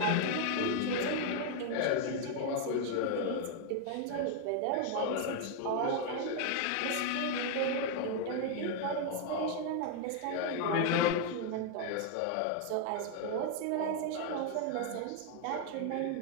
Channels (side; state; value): both; different; correlation 0.00